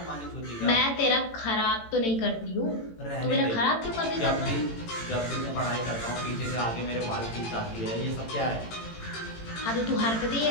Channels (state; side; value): late; right; 18 ms